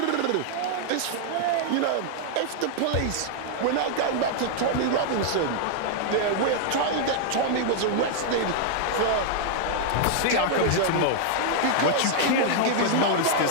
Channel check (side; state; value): both; different; correlation -0.01